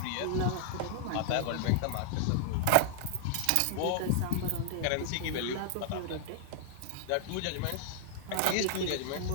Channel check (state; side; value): different; both; correlation -0.01